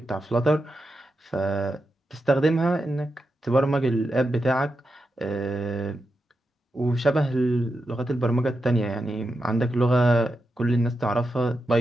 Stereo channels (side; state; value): both; normal; correlation 0.88